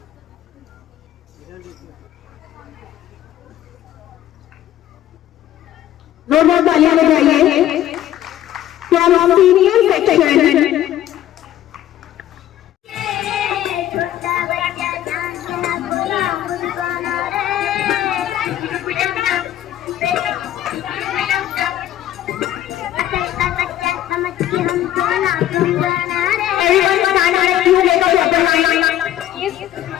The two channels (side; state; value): right; quieter; 12.6 dB